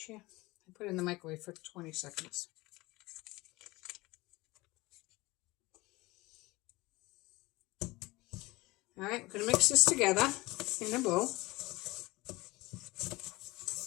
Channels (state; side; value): quieter; right; 21.3 dB